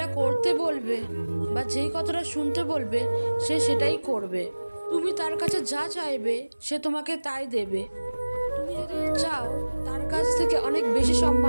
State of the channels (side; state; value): both; inverted; correlation -1.00